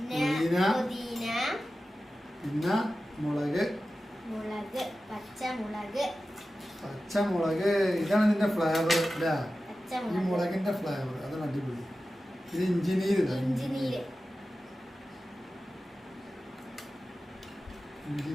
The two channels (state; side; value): normal; both; correlation 0.94